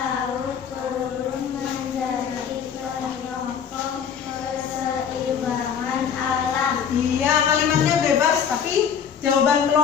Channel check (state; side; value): quieter; right; 7.7 dB